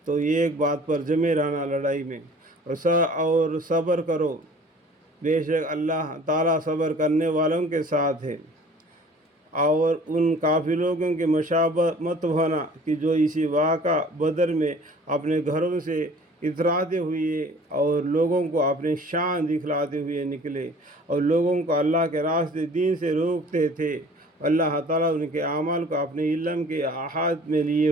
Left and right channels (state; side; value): normal; both; correlation 0.49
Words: تو یہ ایک بات پر جمے رہنا لڑائی میں، اور صبر کرو، بے شک اللہ تعالیٰ صبر کرنے والوں کے ساتھ ہے۔ اور ان کافر لوگوں کے مشابہ مت ہونا کہ جو اسی واقعہ بدر میں اپنے گھروں سے اتراتے ہوئے اور لوگوں کو اپنی شان دکھلاتے ہوئے نکلے اور لوگوں کو اللہ کے راستے دین سے روکتے تھے۔ اللہ تعالیٰ ان کے اعمال کو اپنے علم کے احاطے میں لیے